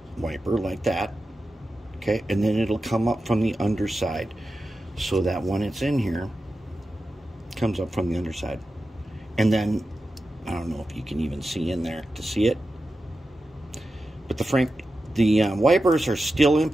wiper like that, okay, and then it'll come up from the underside so that when it's in here, it comes up from the underside. And then I don't know if you can even see in there to see it, but the wipers are still in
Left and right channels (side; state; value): both; normal; correlation 0.92